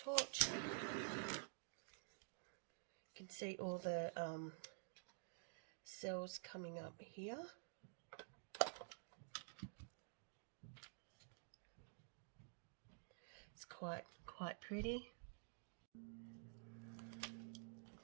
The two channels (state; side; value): silent; left; digital silence